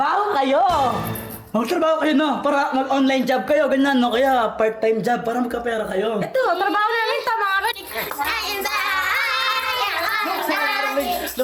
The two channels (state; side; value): identical; both; correlation 1.00